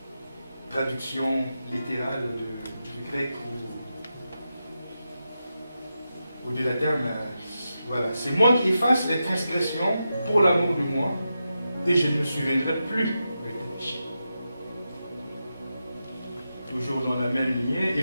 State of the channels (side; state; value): both; inverted; correlation -0.89